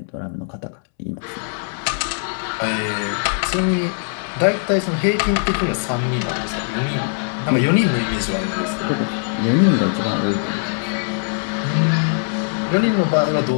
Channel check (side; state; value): right; silent; 65 dB below the other